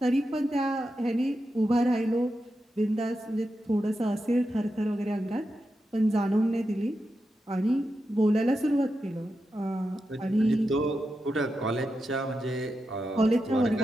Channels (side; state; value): both; normal; correlation 0.88